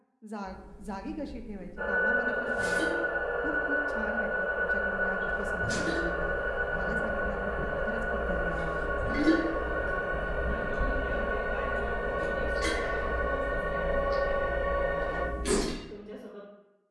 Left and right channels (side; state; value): both; identical; correlation 1.00